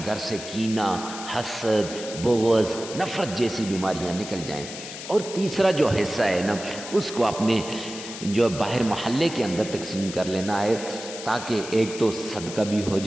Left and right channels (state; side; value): noise; left; hiss, 11 dB below the sound